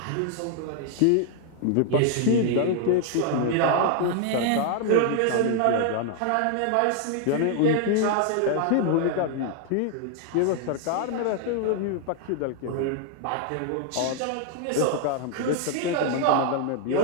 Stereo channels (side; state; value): both; different; correlation 0.00